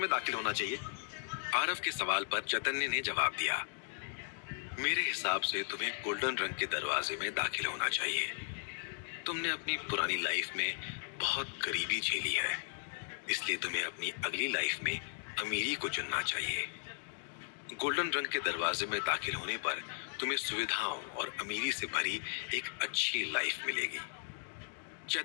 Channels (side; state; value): right; silent; digital silence